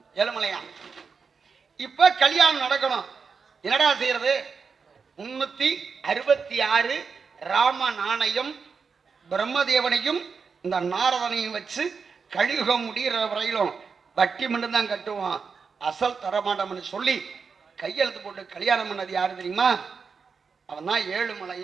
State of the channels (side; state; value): left; quieter; 5.4 dB